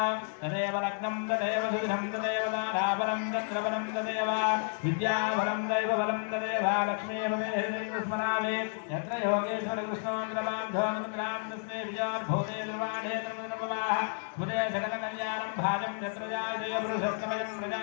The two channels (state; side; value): silent; right; 57 dB below the other